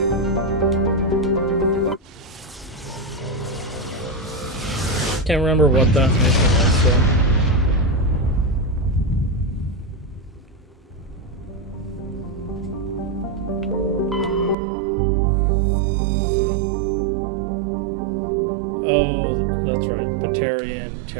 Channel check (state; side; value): drops out; left; at 14.6 s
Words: Can't remember what that mission was, so. Oh, that's right. Batarian